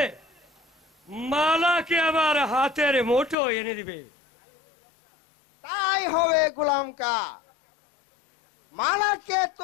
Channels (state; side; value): drops out; right; at 3.4 s